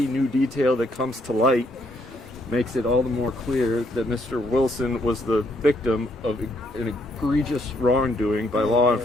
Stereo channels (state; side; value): normal; both; correlation 0.72